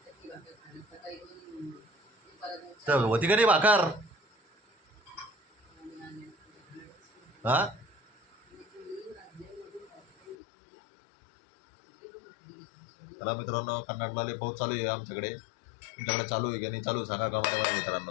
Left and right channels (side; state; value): right; drops out; at 10.4 s